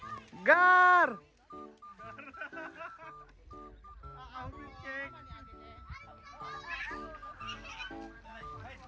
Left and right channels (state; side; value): identical; both; correlation 1.00